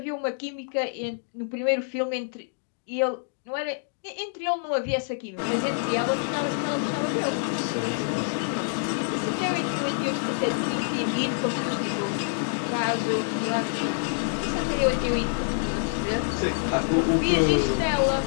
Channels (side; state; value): right; silent; digital silence